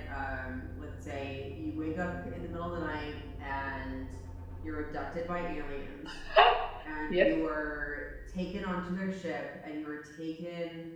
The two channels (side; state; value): both; identical; correlation 1.00